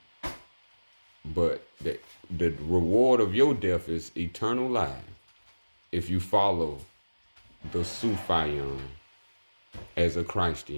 But the reward of your death is eternal life if you follow the Sufiyon as a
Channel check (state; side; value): inverted; both; correlation -1.00